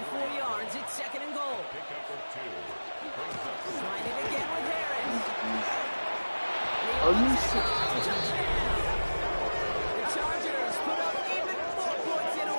4 yards. It's 2nd and goal. Trying it again with Harris. Are you serious? Touchdown. The Chargers put up even more points in a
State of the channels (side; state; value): both; inverted; correlation -1.00